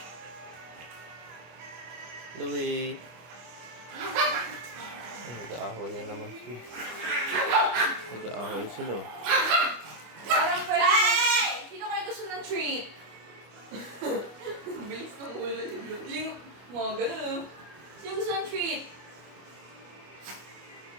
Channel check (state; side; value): late; left; 25 ms